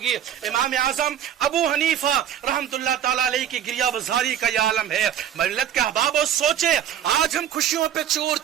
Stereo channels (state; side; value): quieter; left; 10.1 dB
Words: امام اعظم ابو حنیفہ رحمت اللہ تعالی علیہ کی گریہ بزاری کا یہ عالم ہے۔ ملت کے احباب سوچے آج ہم خوشیوں پہ چور